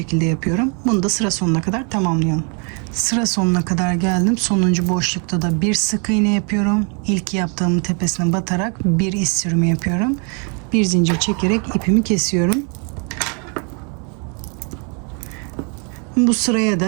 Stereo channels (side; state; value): left; quieter; 37.1 dB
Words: yapıyorum. Bunu da sıra sonuna kadar tamamlıyorum. Sıra sonuna kadar geldim. Sonuncu boşlukta da bir sık iğne yapıyorum. İlk yaptığımın tepesine batarak bir iz sürümü yapıyorum. Bir zincir çekerek ipimi kesiyorum. Bu sıraya